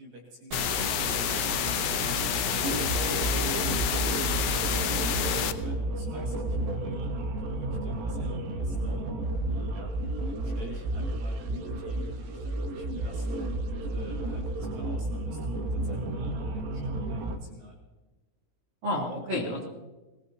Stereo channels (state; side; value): late; left; 17 ms